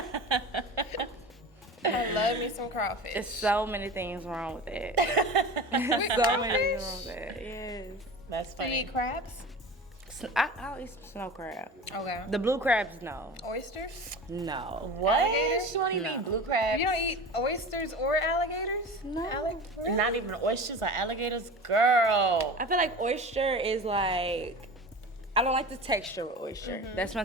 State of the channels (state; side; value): normal; both; correlation 0.33